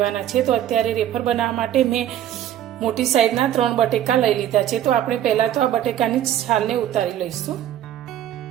छे। तो अत्यारे वेफर बनाववा माटे मैं मोटी साइजना 3 बटेका लई लीधा छे। तो आपणे पहेला तो आ बटेकानी छालने उतारी लईशुं।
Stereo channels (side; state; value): left; quieter; 11.4 dB